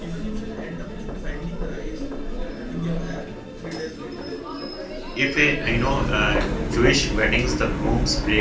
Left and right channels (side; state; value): both; identical; correlation 1.00